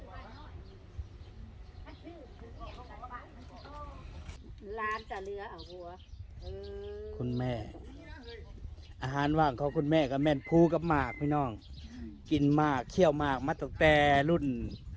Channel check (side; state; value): both; identical; correlation 1.00